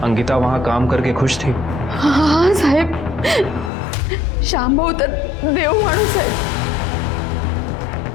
अंकिता वहाँ काम करके खुश थी? हाँ साहेब, श्याम भाऊ तर देव माणूस है।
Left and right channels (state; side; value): drops out; right; at 3.7 s